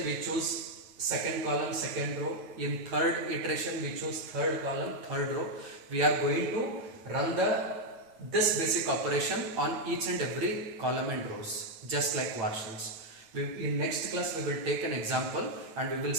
we choose second column, second row. In third iteration, we choose third column, third row. We are going to run this basic operation on each and every column and rows, just like var shells. In next class, we will take an example and we will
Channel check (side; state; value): left; late; 9.0 ms